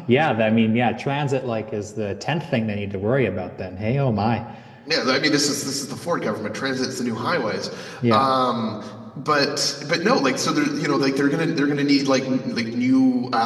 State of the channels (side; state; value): both; identical; correlation 1.00